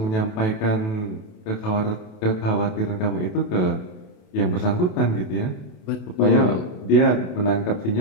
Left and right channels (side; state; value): right; late; 28 ms